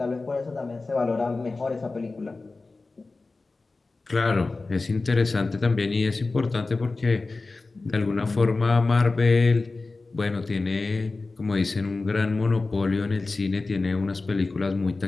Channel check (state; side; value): quieter; right; 3.6 dB